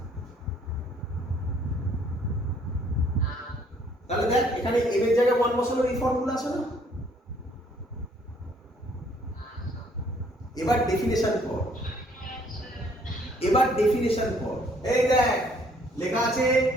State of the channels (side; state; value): both; normal; correlation 0.63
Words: তাহলে দেখ এখানে এম এর জায়গায় 1 বসানোর এই ফর্মুলা আছে না? এবার ডেফিনেশন কর। এবার ডেফিনেশন কর। এই দেখ লেখা আছে